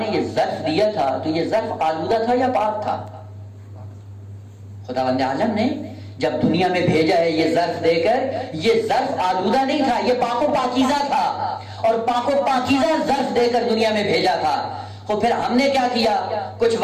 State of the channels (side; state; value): both; identical; correlation 1.00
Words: یہ ظرف دیا تھا تو یہ ظرف آلودہ تھا یا پاک تھا؟ خداوند عالم نے جب دنیا میں بھیجا ہے یہ ظرف دے کر، یہ ظرف آلودہ نہیں تھا، یہ پاک و پاکیزہ تھا، اور پاک و پاکیزہ ظرف دے کر دنیا میں بھیجا تھا. تو پھر ہم نے کیا کیا؟ کچھ